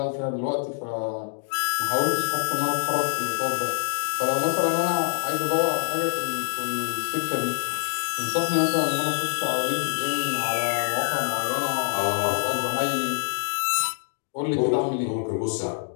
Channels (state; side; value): silent; right; digital silence